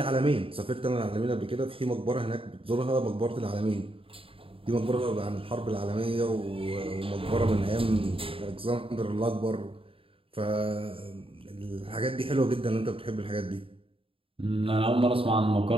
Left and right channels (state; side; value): late; left; 0.27 ms